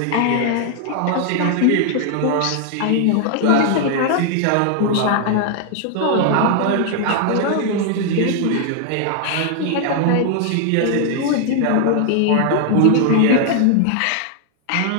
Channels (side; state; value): both; different; correlation 0.00